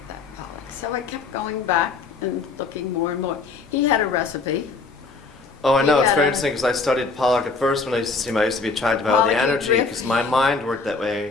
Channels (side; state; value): right; quieter; 4.2 dB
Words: that Pollock. So I kept going back and looking more and more. He had a recipe. Oh, I know. It's Yeah. very interesting because I studied Pollock at first when I used to see him. I used to be attracted by all the Pollock and energy Rick. because my mind worked that